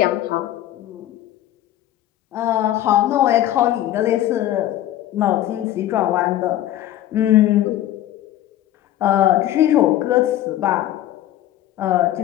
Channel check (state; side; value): quieter; right; 13.3 dB